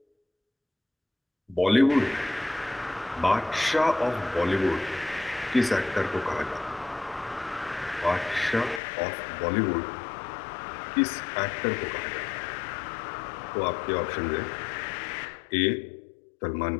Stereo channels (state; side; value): drops out; right; at 8.8 s